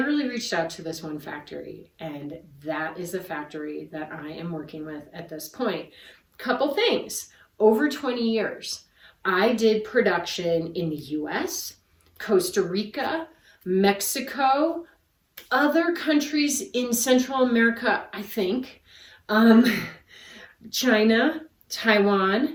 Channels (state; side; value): identical; both; correlation 1.00